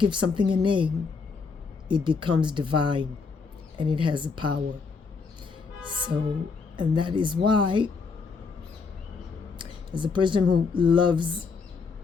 something a name, it becomes divine and it has a power. So, and that is why, as a person who loves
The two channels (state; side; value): quieter; right; 4.9 dB